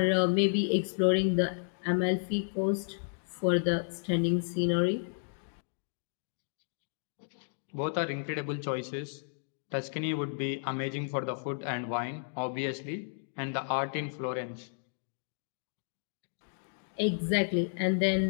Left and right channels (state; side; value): silent; right; digital silence